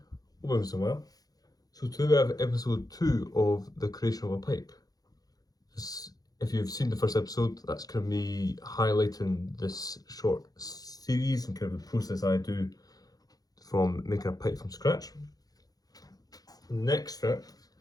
everyone's doing well. So today we have episode 2 of the creation of a pipe. If you've seen the first episode, that's kind of me highlighting this short series and kind of the process I do from making a pipe from scratch. The next step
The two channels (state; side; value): late; right; 0.18 ms